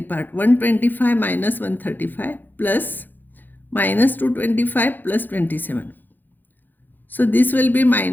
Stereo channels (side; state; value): right; late; 0.088 ms